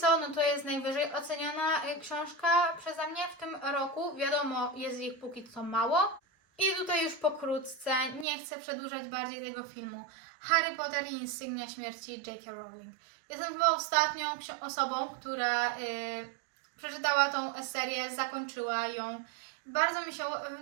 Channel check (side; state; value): left; drops out; at 8.2 s